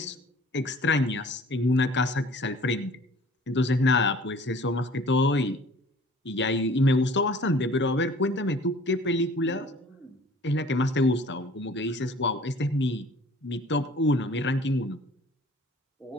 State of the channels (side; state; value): both; normal; correlation 0.49